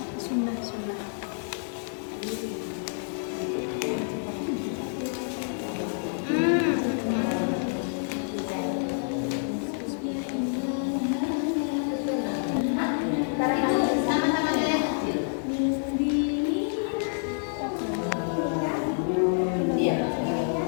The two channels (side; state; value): right; silent; 59 dB below the other